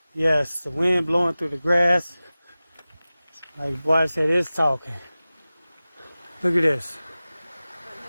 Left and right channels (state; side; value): inverted; both; correlation -0.97